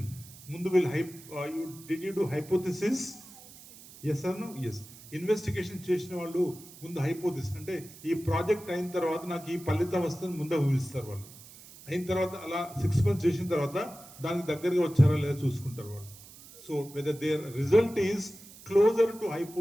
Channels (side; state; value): right; noise; hiss, 19 dB below the sound